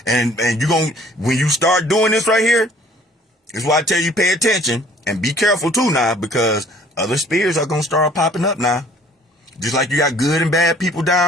And you're gonna, when you start doing this right here, this is why I tell you pay attention and be careful too now, because other spirits are gonna start popping up now. Just like you got good and bad people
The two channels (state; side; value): normal; both; correlation 0.55